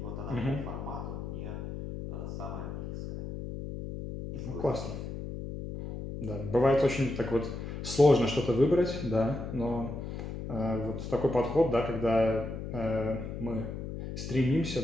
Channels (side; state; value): left; noise; hum, 7 dB below the sound